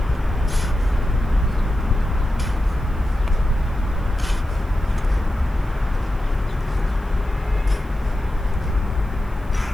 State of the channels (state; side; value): noise; right; hiss, 30 dB below the sound